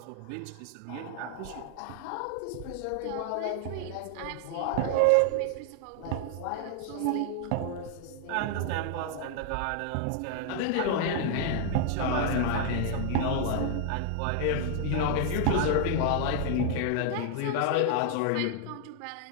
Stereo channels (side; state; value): both; different; correlation 0.00